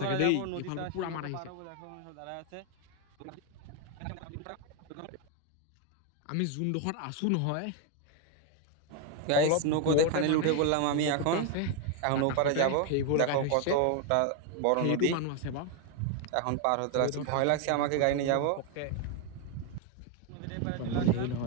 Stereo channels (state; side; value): different; both; correlation 0.01